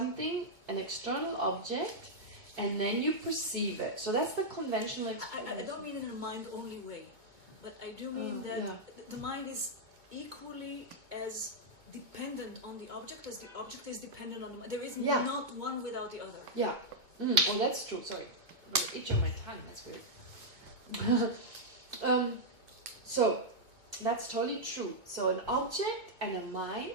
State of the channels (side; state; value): left; late; 2.2 ms